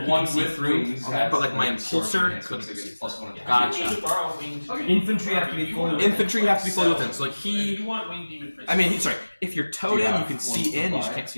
you one can see with through. wings Okay, has but like my the sword impulsor enhancement, couldn't so it see gets plus 1 attack. Gotcha. You can borrow winged Infantry have to be fully within. Infantry have to be fully within. So like If he. you want winged demon princes, I mean, sorry. If you're towed Do you in, you have can one see in. You just supply? can't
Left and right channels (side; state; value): both; inverted; correlation -1.00